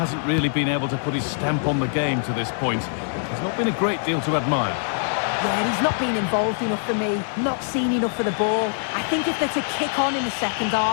really been able to put his stamp on the game to this point. There's not been a great deal to admire. Yeah, he's not been involved enough for me, not seen enough for the ball. I think if they're to kick on in the second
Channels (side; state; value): right; silent; digital silence